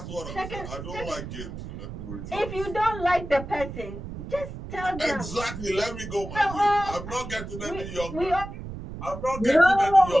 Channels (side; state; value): right; noise; rumble, 10 dB below the sound